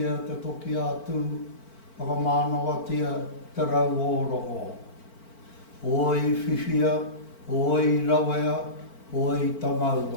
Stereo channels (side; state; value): right; late; 4.4 ms